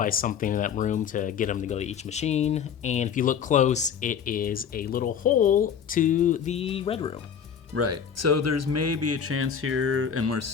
something in that room to get him to go to each machine, and if you look close, it is a little hole to the Red Room. Right. So there's maybe a chance here, and we're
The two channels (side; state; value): right; quieter; 7.6 dB